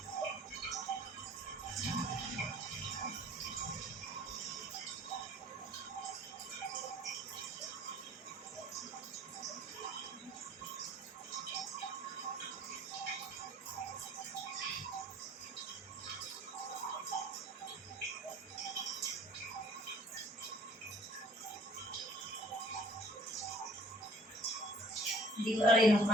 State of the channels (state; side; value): normal; both; correlation 0.52